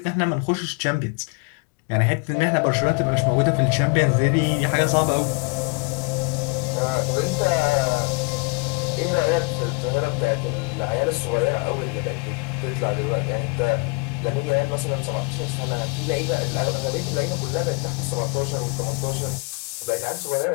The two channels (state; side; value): quieter; right; 31.2 dB